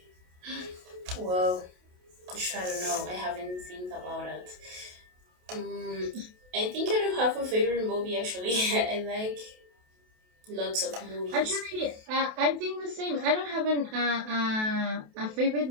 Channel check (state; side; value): late; left; 28 ms